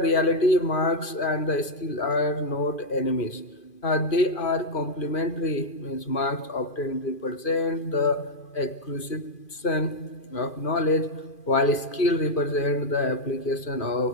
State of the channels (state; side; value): late; right; 2.5 ms